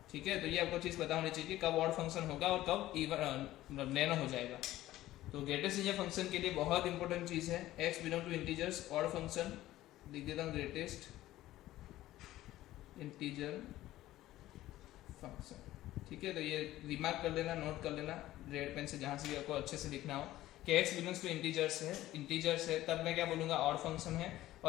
ठीक है। तो ये आपको चीज पता होनी चाहिए कि कब ऑड फंक्शन होगा और कब इवन नैनो हो जाएगा। तो ग्रेटेस्ट इंटीजर फंक्शन के लिए बहुत इंपॉर्टेंट चीज है, x belong to integers, odd function लिख देता हूँ, ग्रेटेस्ट इंटीजर फंक्शन, ठीक है। तो ये रिमार्क कर लेना, नोट कर लेना रेड पेन से, जहां से भी आपको अच्छे से लिखना हो कि x बिलोंग्स टू इंटीजर्स है, तब मैं क्या बोलूंगा, ऑड फंक्शन है।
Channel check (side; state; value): right; quieter; 15.2 dB